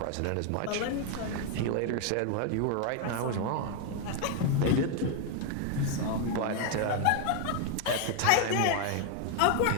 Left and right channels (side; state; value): both; different; correlation 0.01